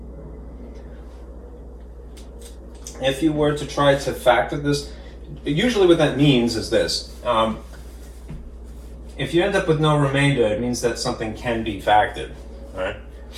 If you were to try to factor this, usually what that means is this. If you end up with no remainder, it means that something can be factored. Right?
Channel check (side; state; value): both; identical; correlation 1.00